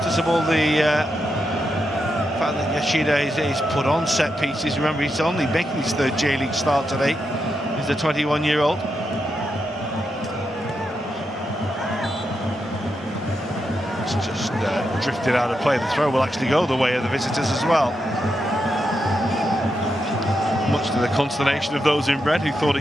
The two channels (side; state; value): both; normal; correlation 0.85